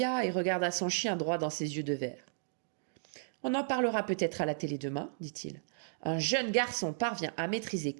et regarda son chien droit dans ses yeux de verre. « On en parlera peut-être à la télé demain, dit-il. Un jeune garçon parvient à maîtriser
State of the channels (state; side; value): silent; left; digital silence